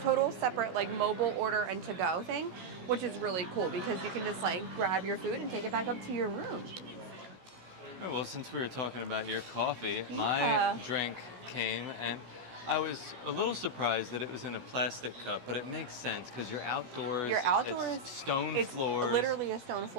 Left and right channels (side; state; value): left; late; 16 ms